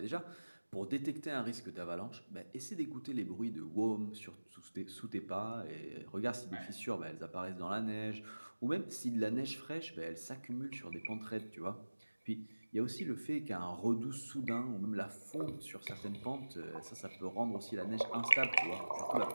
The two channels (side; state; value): both; inverted; correlation -1.00